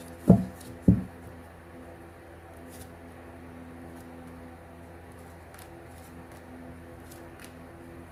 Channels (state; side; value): identical; both; correlation 1.00